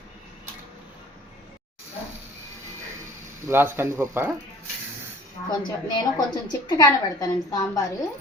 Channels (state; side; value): normal; both; correlation 0.47